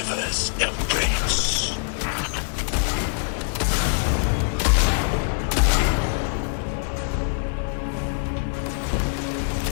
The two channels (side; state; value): right; silent; 55 dB below the other